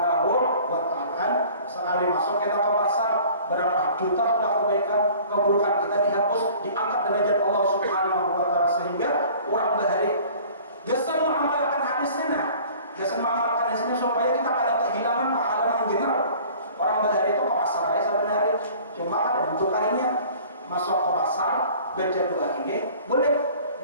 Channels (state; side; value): inverted; both; correlation -0.48